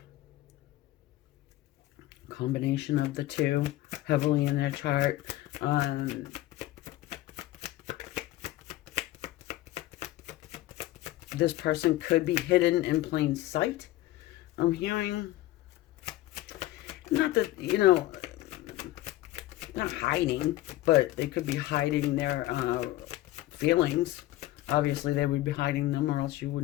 Combination of the two, heavily in their chart. This person could be hidden in plain sight. I'm hearing, not that, you know, not hiding, but they could be hiding their feelings. Obviously, they would be hiding them, or else you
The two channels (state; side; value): quieter; right; 16.1 dB